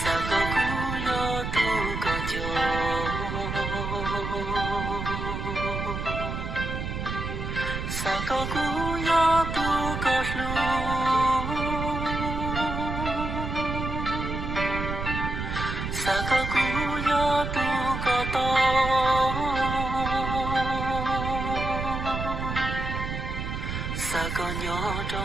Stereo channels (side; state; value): right; noise; rumble, 4 dB below the sound